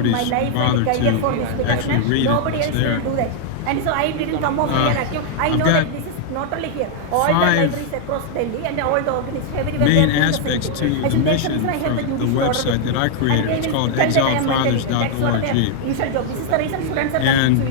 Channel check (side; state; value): both; different; correlation 0.00